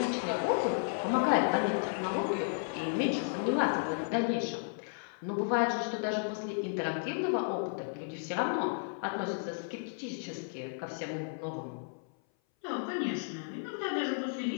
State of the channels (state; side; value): silent; right; 55 dB below the other